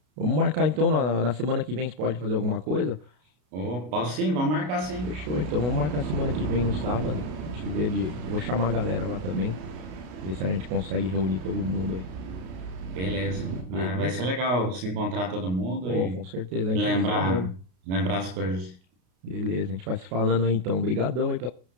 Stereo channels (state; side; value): late; left; 33 ms